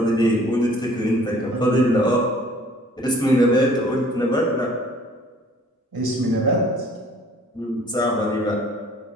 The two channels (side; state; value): both; normal; correlation 0.54